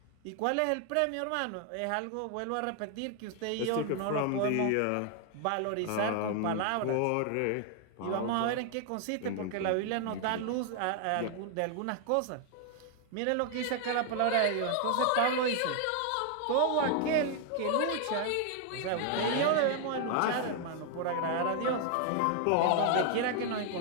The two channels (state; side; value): different; both; correlation 0.00